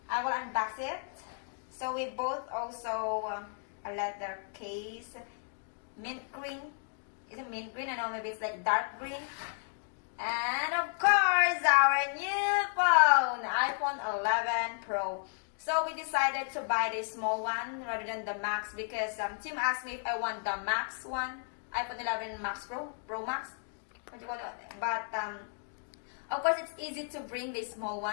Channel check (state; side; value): silent; right; 56 dB below the other